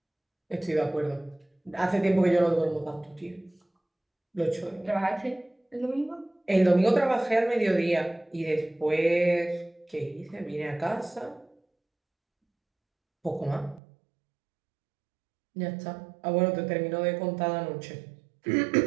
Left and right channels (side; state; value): left; drops out; at 13.8 s